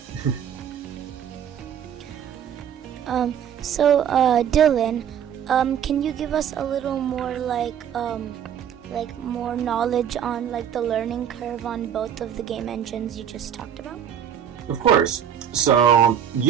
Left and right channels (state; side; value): quieter; left; 9.0 dB